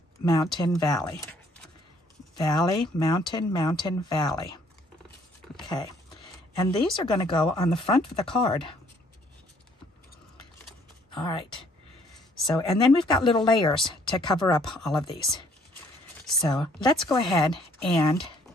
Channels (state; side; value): normal; both; correlation 0.62